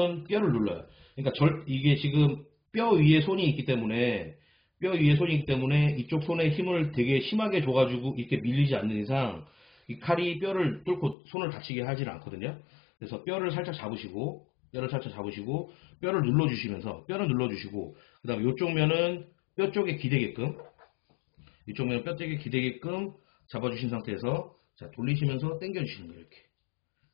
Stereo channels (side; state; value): right; drops out; at 11.2 s